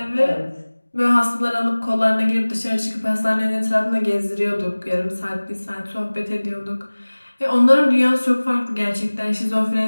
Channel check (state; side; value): inverted; both; correlation -1.00